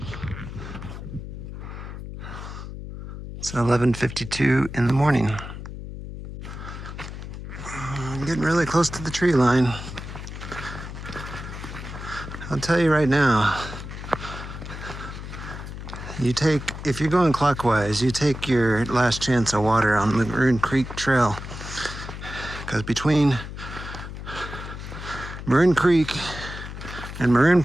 It's 11:52 in the morning. I'm getting really close to the tree line. I'll tell you right now, if you're going clockwise, you take your last chance of water on the Maroon Creek Trail. Because between Maroon Creek and Maroon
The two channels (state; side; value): noise; left; hum, 10 dB below the sound